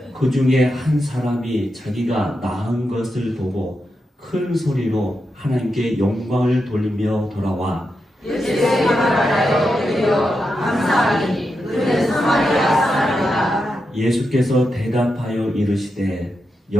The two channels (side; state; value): both; normal; correlation 0.87